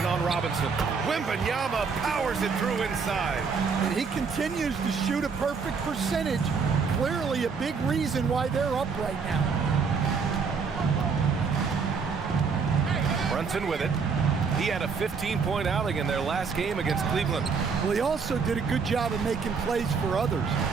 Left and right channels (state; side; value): quieter; left; 5.4 dB